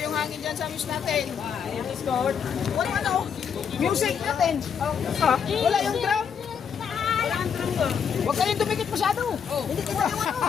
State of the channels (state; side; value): quieter; right; 7.2 dB